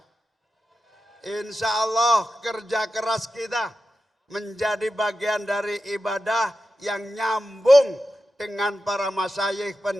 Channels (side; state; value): both; normal; correlation 0.92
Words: Insya Allah kerja keras kita menjadi bagian dari ibadah yang nyambung dengan para masyayikh